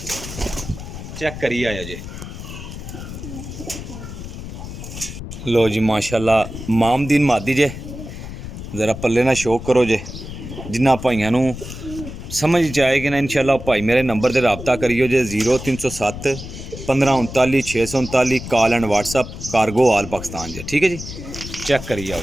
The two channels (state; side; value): noise; left; rumble, 10 dB below the sound